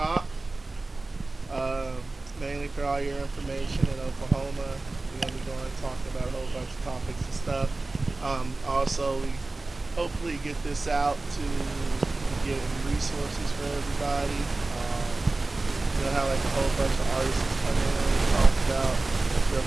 uh, mainly for all your information in Oklahoma. We're gonna be going talking about a whole bunch of topics and stuff. Also, we hopefully get this out to be getting resources for everybody. We'll have like a whole bunch of artists come in and talk about their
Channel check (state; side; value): quieter; left; 3.2 dB